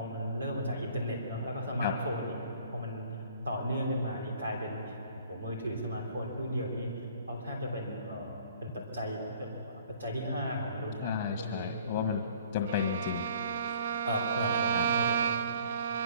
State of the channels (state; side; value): inverted; both; correlation -0.54